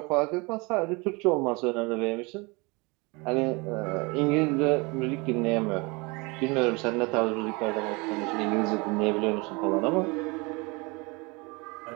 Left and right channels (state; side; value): quieter; left; 27.2 dB